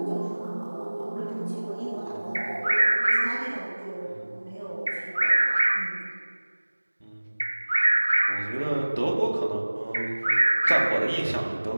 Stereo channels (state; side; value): inverted; both; correlation -1.00